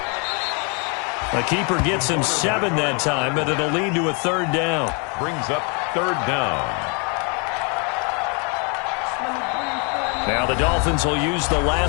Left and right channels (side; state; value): right; quieter; 35.0 dB